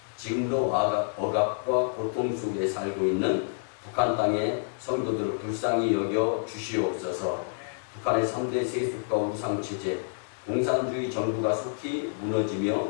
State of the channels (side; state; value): right; silent; digital silence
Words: 지금도 억압과 고통 속에 살고 있는 북한 땅의 성도들을 불쌍히 여겨 주시옵소서. 북한의 3대 세습과 우상체제, 공산주의 정부가 속히 무너지며